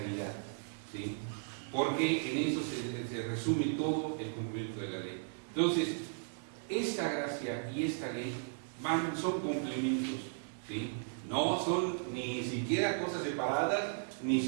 ¿sí?, porque en eso se resume todo el cumplimiento de la ley. Entonces, esta gracia y esta ley son complementos, ¿sí?, no son ni siquiera cosas separadas, ni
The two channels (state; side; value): silent; left; digital silence